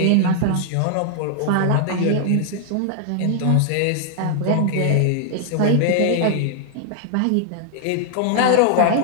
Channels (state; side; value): different; both; correlation 0.00